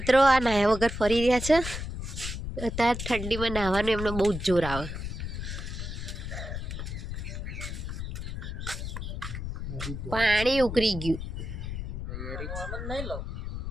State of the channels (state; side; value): noise; left; rumble, 6 dB below the sound